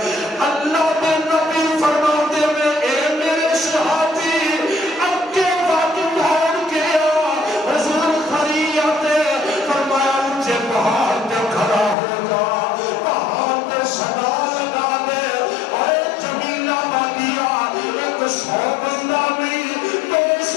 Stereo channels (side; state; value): right; drops out; at 12.0 s